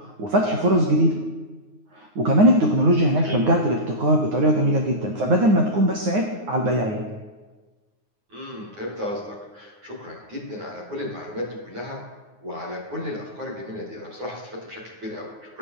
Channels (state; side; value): late; left; 9.5 ms